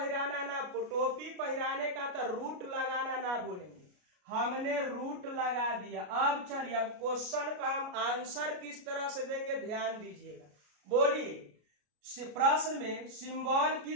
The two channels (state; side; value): late; left; 33 ms